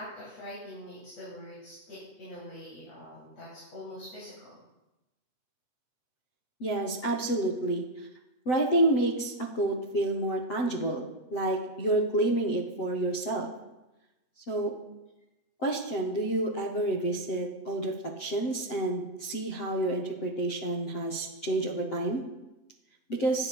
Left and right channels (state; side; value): late; right; 7.9 ms